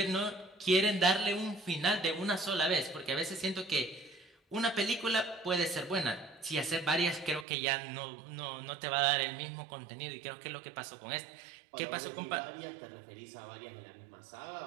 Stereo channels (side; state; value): left; drops out; at 7.5 s